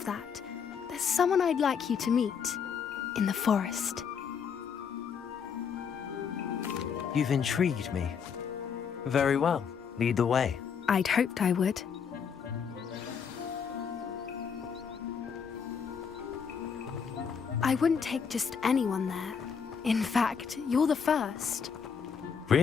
that, there's someone I'd like you to meet. In the forest. You've intrigued me. Very well. Lead the way. I'd hoped I would. I wouldn't take just anyone there. In fact, you're the first.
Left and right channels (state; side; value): quieter; right; 6.7 dB